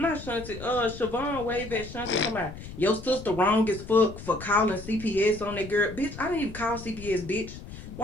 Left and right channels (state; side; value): noise; left; rumble, 13 dB below the sound